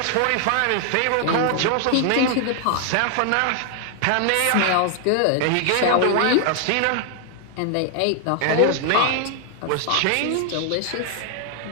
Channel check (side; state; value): both; different; correlation 0.00